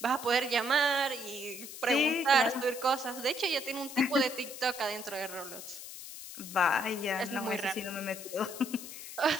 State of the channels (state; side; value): noise; left; hiss, 11 dB below the sound